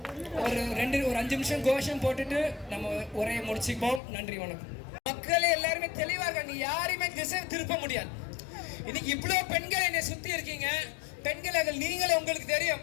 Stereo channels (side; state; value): right; drops out; at 4.0 s